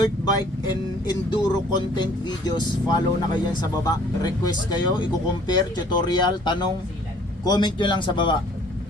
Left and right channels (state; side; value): normal; both; correlation 0.56